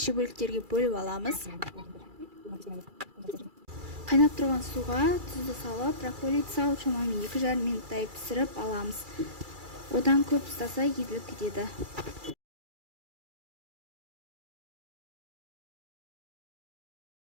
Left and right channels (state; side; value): late; left; 2.3 ms